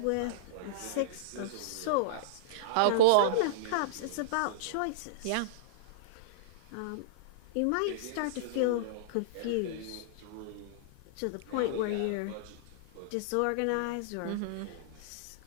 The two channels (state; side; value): different; both; correlation -0.02